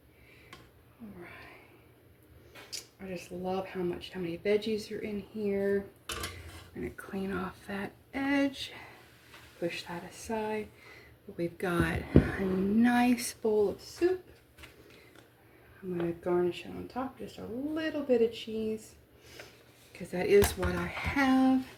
All right. I just love how many veggies are in here. I'm gonna clean off that edge. Push that aside. But we've got a nice bowl of soup. I'm going to garnish it on top, just a little bit of cheese, because that is what I have.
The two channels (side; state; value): both; identical; correlation 1.00